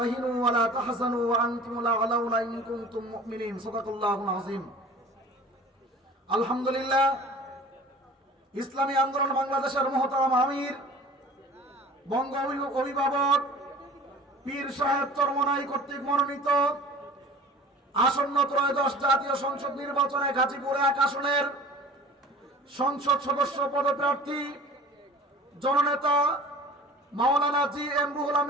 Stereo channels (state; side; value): normal; both; correlation 0.43